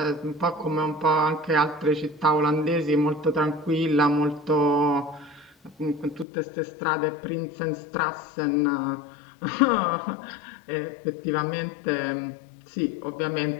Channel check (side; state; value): right; drops out; at 6.2 s